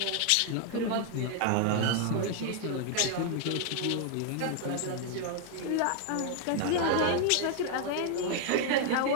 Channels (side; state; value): both; different; correlation 0.00